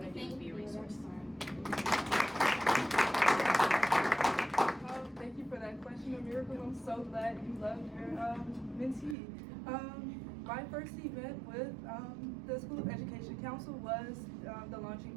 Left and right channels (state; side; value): drops out; left; at 9.2 s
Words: to do, is be a resource. Thank you for that question, Miracle. I'm so glad you loved your mentee. My first event with the School of Education Council was the